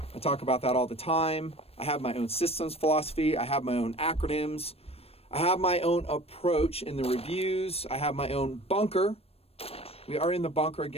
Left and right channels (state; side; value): late; right; 0.28 ms